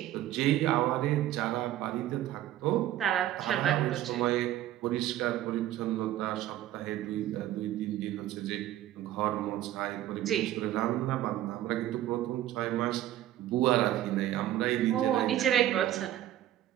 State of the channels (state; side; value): quieter; left; 13.3 dB